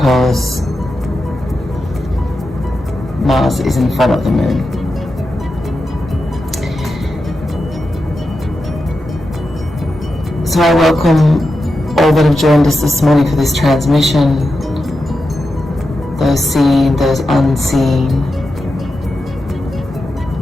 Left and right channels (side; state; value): both; normal; correlation 0.89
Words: Mars is in front of the Moon. So I welcome all that have joined us this morning for this transmission, those seen, those unseen.